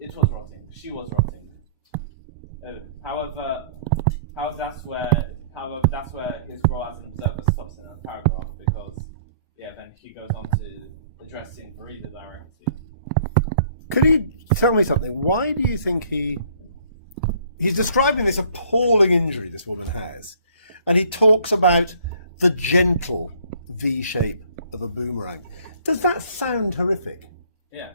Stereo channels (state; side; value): inverted; both; correlation -0.56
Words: was rotting, she was rotting. However, that's where his role as an observer stops in that paragraph, because then he goes on to addressing the reader directly. Could you tell me something? Why do you think he's describing this appalling injury this woman has, and he talks about the gentle V shape of a boomerang? Does that sound horrific? Yeah.